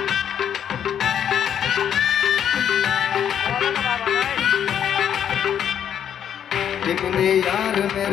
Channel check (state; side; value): quieter; right; 9.1 dB